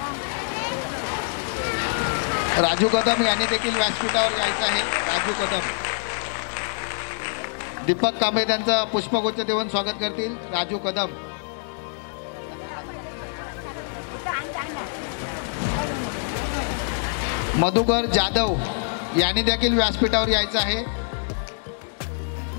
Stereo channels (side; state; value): right; silent; digital silence